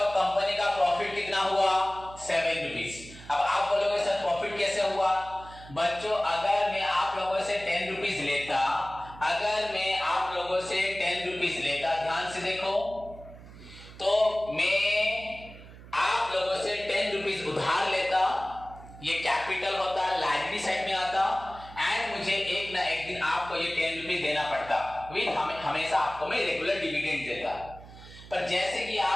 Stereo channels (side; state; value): right; noise; hum, 17 dB below the sound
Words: कंपनी का प्रॉफिट कितना हुआ? 7 रुपीज। अब आप बोलोगे सर प्रॉफिट कैसे हुआ? बच्चों अगर मैं आप लोगों से 10 रुपीज लेता, अगर मैं आप लोगों से 10 रुपीज लेता, ध्यान से देखो, तो मैं आप लोगों से 10 रुपीज उधार लेता, ये कैपिटल होता, लायबिलिटी साइड में आता एंड मुझे एक ना एक दिन आपको ये 10 रुपीज देना पड़ता, विद हमेशा आपको मैं रेगुलर डिविडेंड देता। पर जैसे कि